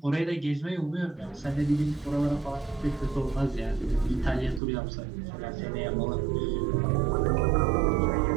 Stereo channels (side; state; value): left; drops out; at 4.6 s